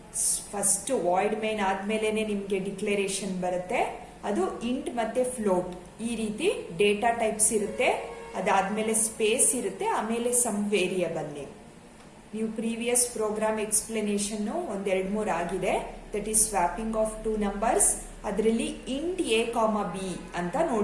ಫಸ್ಟ್ ವಾಯ್ಡ್ ಮೇನ್ ಆದ್ಮೇಲೆನೆ ನಿಮಗೆ ಡಿಕ್ಲರೇಷನ್ ಬರುತ್ತೆ. ಅದು ಇಂಟ್ ಮತ್ತೆ ಫ್ಲೋಟ್ ಈ ರೀತಿ ಡೇಟಾ ಟೈಪ್ಸ್ ಇರುತ್ತೆ. ಅದಾದ್ಮೇಲೆ ಸ್ಪೇಸ್ ಇರುತ್ತೆ, ಆಮೇಲೆ ಸಮ್ ವೇರಿಯಬಲ್ ನೇಮ್. ನೀವು ಪ್ರೀವಿಯಸ್ ಪ್ರೋಗ್ರಾಮ್ ಎಕ್ಸ್ಪ್ಲನೇಷನ್ 1-2-3 ಆಗಿದೆ. That is swapping of 2 numbers. ಅದರಲ್ಲಿ ಇಂಟ್ A, B ಅಂತ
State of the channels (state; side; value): identical; both; correlation 1.00